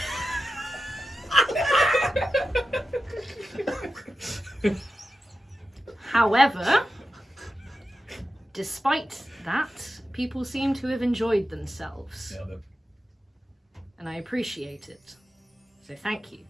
However, despite that, people seem to have enjoyed themselves, Nailed it. and I appreciate it. So thank you.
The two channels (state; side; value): normal; both; correlation 0.92